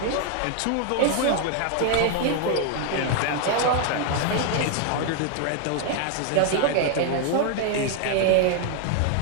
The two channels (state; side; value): different; both; correlation 0.00